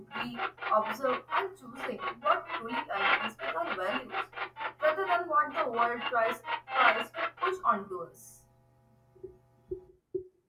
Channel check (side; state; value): both; identical; correlation 1.00